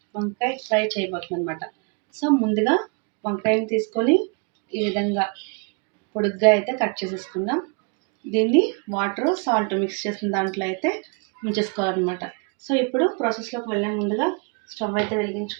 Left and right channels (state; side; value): quieter; left; 33.7 dB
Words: వంకాయ ఫ్రై చేయబోతున్నాం అనమాట. సో ముందుగా వంకాయని తీసుకొని ఈ విధంగా పొడుగ్గా అయితే కట్ చేసేసుకుందాం. దీన్ని వాటర్ సాల్ట్ మిక్స్ చేసిన దాంట్లో అయితే ఉంచేసుకోవాలన్నమాట. సో ఇప్పుడు ప్రాసెస్లోకి వెళ్ళే ముందుగా స్టవ్ అయితే